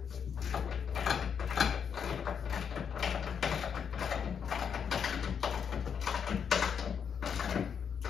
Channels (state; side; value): quieter; right; 7.3 dB